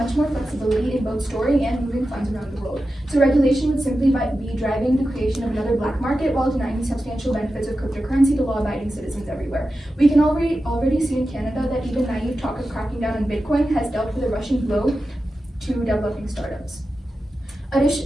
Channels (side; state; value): both; normal; correlation 0.92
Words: more flexibility in both storing and moving funds around the world. So regulation would simply be driving the creation of another black market while denying the substantial benefits of cryptocurrency to law-abiding citizens everywhere. We can already see in Canada that even naive talk of cracking down on Bitcoin has dealt with a rushing blow to developing startups.